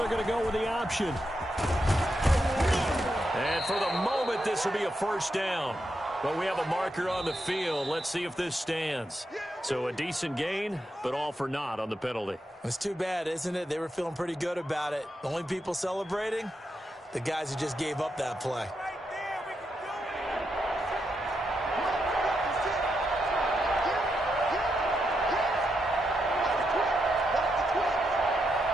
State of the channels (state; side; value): normal; both; correlation 0.84